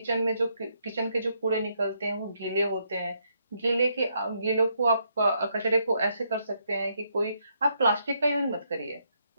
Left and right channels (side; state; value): both; inverted; correlation -0.76